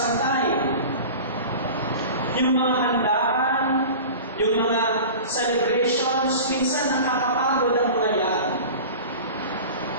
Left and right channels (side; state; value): both; inverted; correlation -0.36